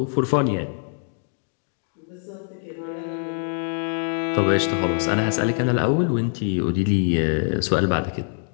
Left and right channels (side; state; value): right; silent; 63 dB below the other